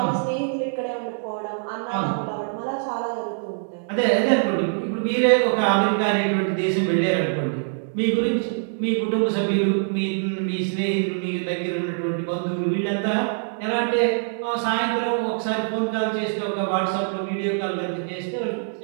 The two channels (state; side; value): silent; left; digital silence